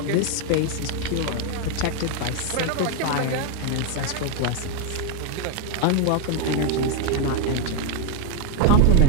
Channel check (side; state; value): both; different; correlation 0.01